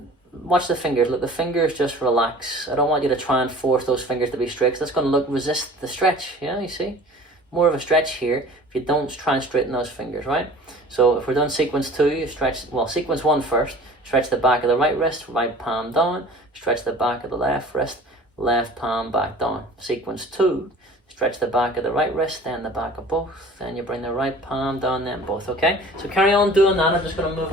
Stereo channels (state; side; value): normal; both; correlation 0.45